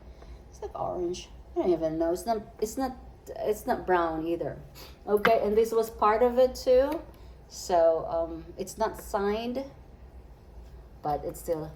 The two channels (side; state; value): both; identical; correlation 1.00